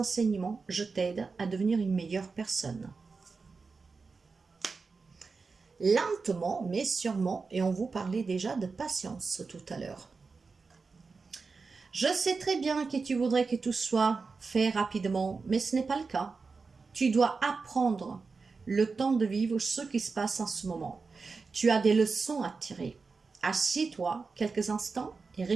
je t'aide à devenir une meilleure personne. Lentement, mais sûrement, et on vous parlait déjà de patience tout à l'heure. Je sais très bien que tu voudrais que tout soit fait rapidement, mais ce n'est pas le cas. Tu dois apprendre le temps de vivre ce qui se passe en ce moment. Tu as des leçons à tirer. Assieds-toi quelques instants et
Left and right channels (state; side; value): quieter; left; 4.5 dB